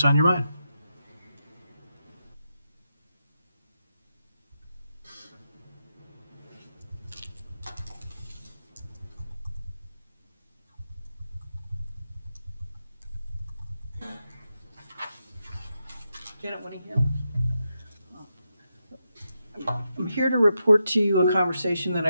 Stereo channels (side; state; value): both; inverted; correlation -0.86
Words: on your mind. Janet Winningham. I'm here to report to you a conversation that